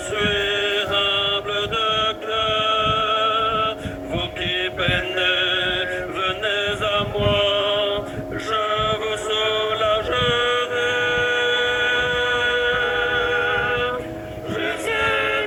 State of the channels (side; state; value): both; identical; correlation 1.00